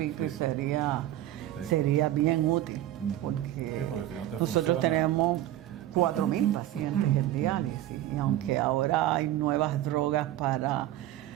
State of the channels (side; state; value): left; quieter; 13.6 dB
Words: y sería bien útil, porque si nosotros tenemos 4.000 pacientes en diálisis, y aunque ahora hay nuevas drogas para